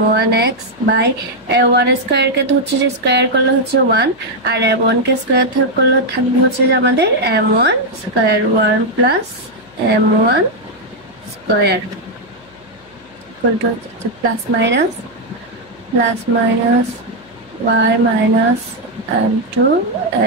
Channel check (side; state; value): left; noise; hum, 29 dB below the sound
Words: by 1 square কে তো হচ্ছে যে স্কয়ার করলে হচ্ছে 1, আর m1 কে স্কয়ার করলে থাকবে হচ্ছে যে আমাদের m1 square 1 plus m1 square equal to হচ্ছে plus minus y minus